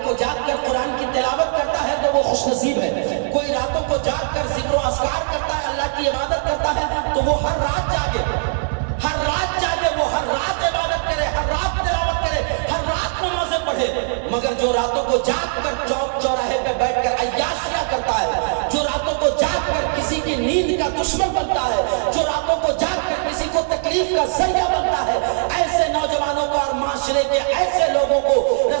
کو جاگ کر قرآن کی تلاوت کرتا ہے تو وہ خوش نصیب ہے، کوئی راتوں کو جاگ کر ذکر و اذکار کرتا ہے، اللہ کی عبادت کرتا ہے، تو وہ ہر رات جاگے، ہر رات جاگے، وہ ہر رات عبادت کرے، ہر رات تلاوت کرے، ہر رات نمازیں پڑھے۔ مگر جو راتوں کو جاگ کر چوک چوراہے پہ بیٹھ کر عیاشیاں کرتا ہے، جو راتوں کو جاگ کر کسی کی نیند کا دشمن بنتا ہے، جو راتوں کو جاگ کر کسی کو تکلیف کا ذریعہ بنتا ہے، ایسے نوجوانوں کو اور معاشرے کے ایسے لوگوں کو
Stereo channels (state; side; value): silent; left; digital silence